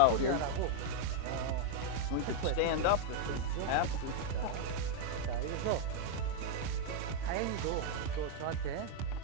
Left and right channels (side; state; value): both; different; correlation -0.01